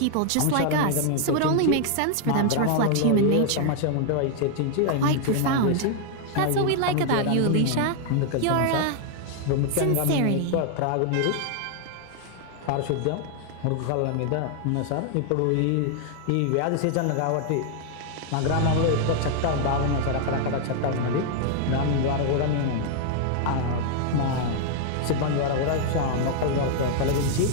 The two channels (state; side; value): different; both; correlation 0.00